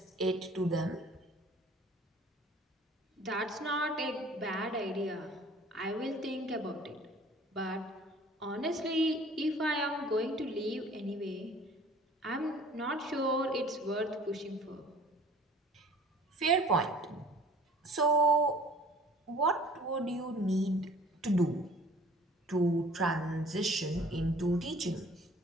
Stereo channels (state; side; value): normal; both; correlation 0.51